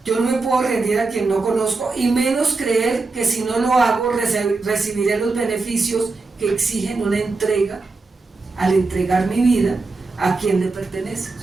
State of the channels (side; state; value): left; quieter; 3.8 dB